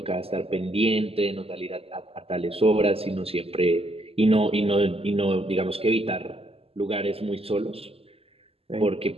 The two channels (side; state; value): left; late; 0.28 ms